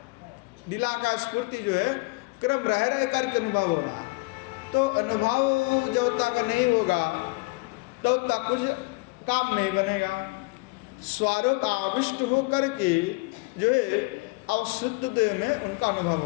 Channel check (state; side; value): quieter; right; 26.6 dB